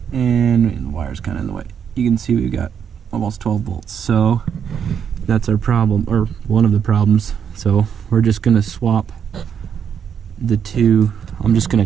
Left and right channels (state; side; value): quieter; left; 7.8 dB